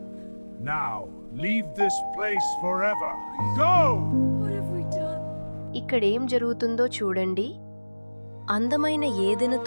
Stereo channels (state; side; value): inverted; both; correlation -1.00